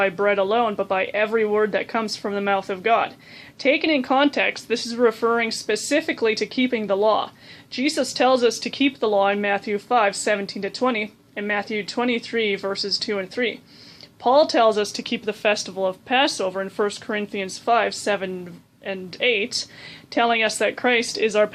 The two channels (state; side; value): identical; both; correlation 1.00